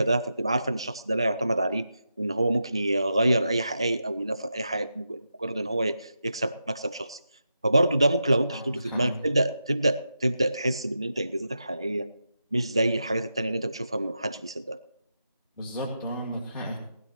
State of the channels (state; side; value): inverted; both; correlation -0.87